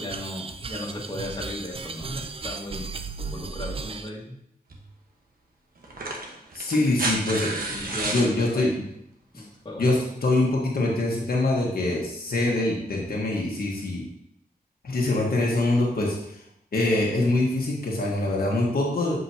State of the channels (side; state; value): both; normal; correlation 0.71